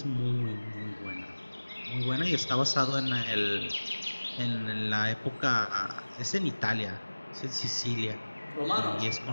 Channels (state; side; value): inverted; both; correlation -1.00